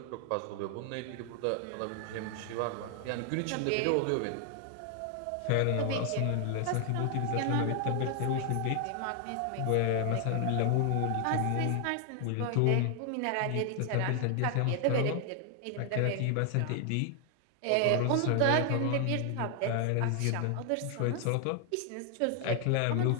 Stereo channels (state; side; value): different; both; correlation 0.00